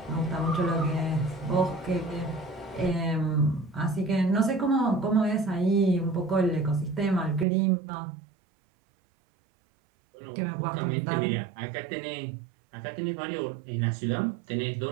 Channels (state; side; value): drops out; left; at 7.5 s